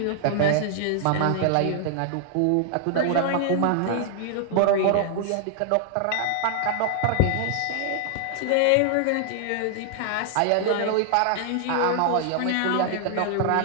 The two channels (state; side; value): different; both; correlation 0.00